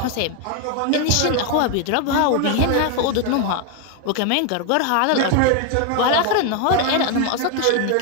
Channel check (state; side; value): different; both; correlation 0.01